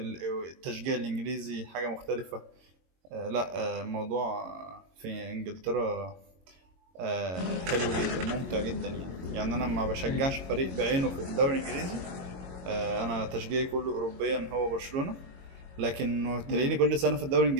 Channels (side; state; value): left; late; 22 ms